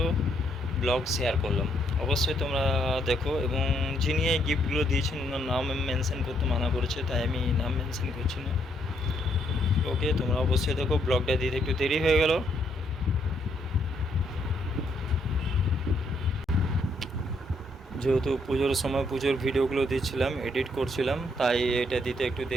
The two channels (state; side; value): normal; both; correlation 0.72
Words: ব্লগ শেয়ার করলাম। অবশ্যই তোমরা দেখো, এবং যিনি এই গিফটগুলো দিয়েছেন ওনার নাম মেনশন করতে মানা করেছে, তাই আমি নাম মেনশন করছি না। ওকে, তোমরা অবশ্যই দেখো। ব্লগটা দিতে একটু দেরি হয়ে গেল, যেহেতু পুজোর সময় পুজোর ভিডিওগুলো দিচ্ছিলাম, এডিট করছিলাম, তাই এটা দিতে একটু